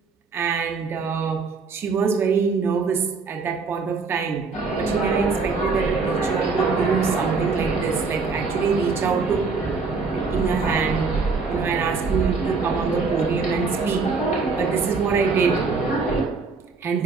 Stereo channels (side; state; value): left; quieter; 4.5 dB